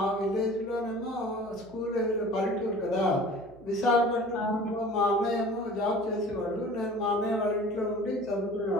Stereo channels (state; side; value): noise; right; hum, 24 dB below the sound